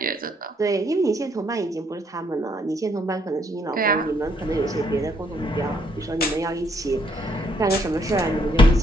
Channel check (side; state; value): both; normal; correlation 0.70